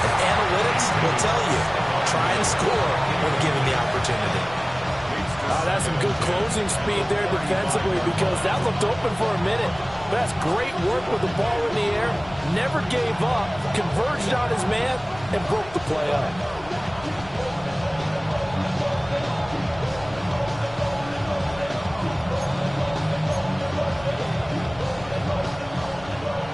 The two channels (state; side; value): noise; left; rumble, 18 dB below the sound